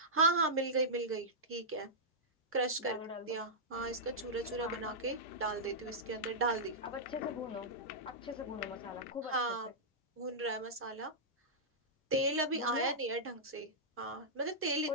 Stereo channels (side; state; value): both; normal; correlation -0.11